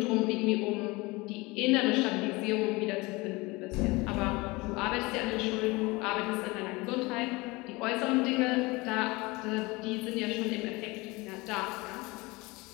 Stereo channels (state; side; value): quieter; right; 23.6 dB